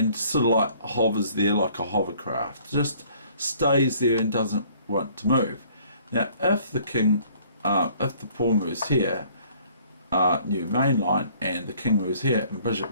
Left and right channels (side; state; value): both; inverted; correlation -0.57